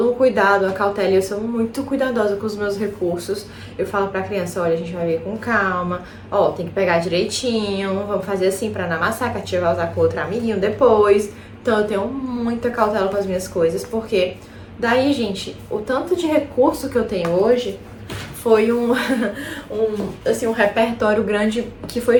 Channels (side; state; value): both; identical; correlation 1.00